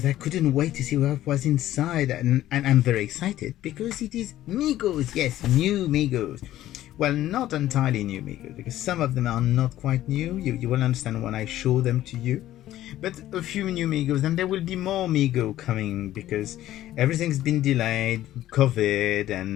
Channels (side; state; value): right; quieter; 13.8 dB